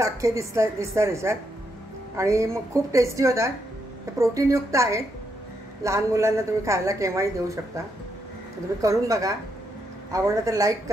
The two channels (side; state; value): both; normal; correlation 0.79